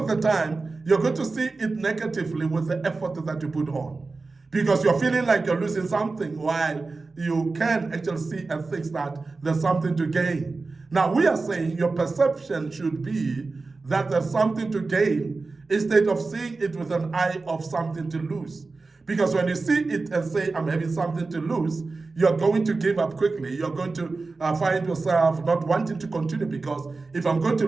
the time, you're going to see it negatively with the effort that you put on. Because you're feeling like you're losing something while you can actually see and think that there's something to gain. Now, we are saying your perception should be that there's something to gain instead of seeing it with an eye of something to lose. Because when you see it and say, I'm having something to lose, you're going to give up quickly. You're going to find yourself not wanting to continue, because if I'm going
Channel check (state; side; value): quieter; left; 3.8 dB